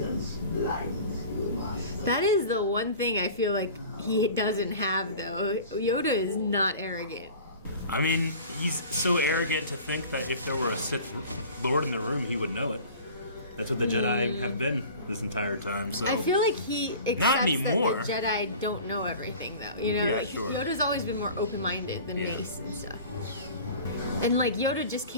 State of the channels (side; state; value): both; inverted; correlation -0.42